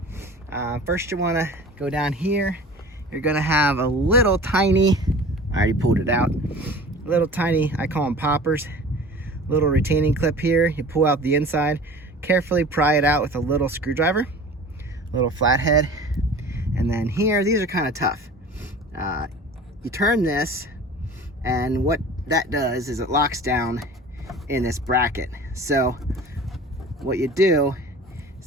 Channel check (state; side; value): normal; both; correlation 0.41